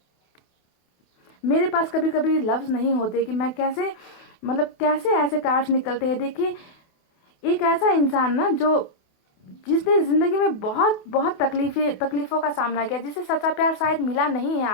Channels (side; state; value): right; late; 28 ms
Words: मेरे पास कभी कभी लफ्ज नहीं होते कि मैं कैसे, मतलब कैसे ऐसे कार्ड्स निकलते हैं। देखिए, एक ऐसा इंसान ना जो, जिसने जिंदगी में बहुत बहुत तकलीफों का सामना किया, जिसे सच्चा प्यार शायद मिला नहीं है